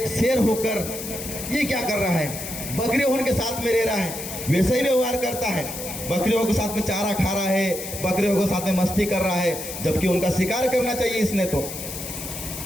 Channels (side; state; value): left; noise; hiss, 8 dB below the sound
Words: शेर होकर ये क्या कर रहा है, बकरियों होने के साथ में रह रहा है, वैसे ही व्यवहार करता है, बकरियों के साथ में चारा खा रहा है, बकरियों के साथ में मस्ती कर रहा है, जबकि उनका शिकार करना चाहिए इसने। तो